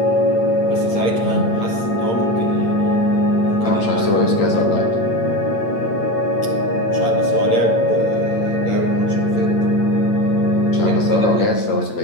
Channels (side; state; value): right; late; 8.8 ms